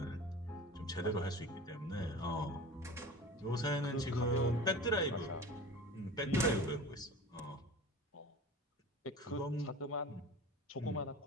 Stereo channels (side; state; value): both; normal; correlation 0.36